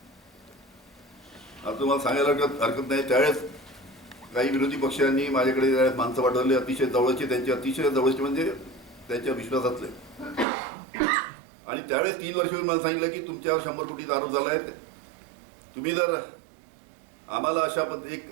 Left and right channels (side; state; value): left; drops out; at 10.5 s